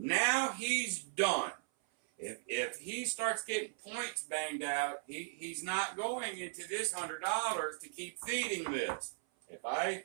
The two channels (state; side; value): silent; left; 53 dB below the other